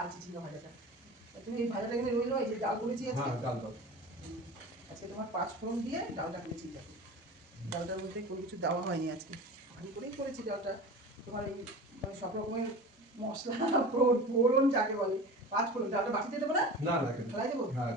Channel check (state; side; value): normal; both; correlation 0.34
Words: চিচিঙ্গা ভাজাটা। তুমি এই ভাজাটা এখানে রইলো, এই যে ডাল করেছি আজকে। হ্যাঁ ডাল দাও। আজকে তোমার 5 ফোড়ন দিয়ে ডালটা করেছি। দেখো ডালটার মধ্যে কোনো কিছু দেওয়া হয়নি আজকে, ভালো করেই করেছি ডালটা। তোমার এই মানে সব রকমের মশলা ফোড়ন যাকে বলে 5 ফোড়ন। ডালটা বাটিতে দেবো না? না না কেন? ফেলাই দেবো? হ্যাঁ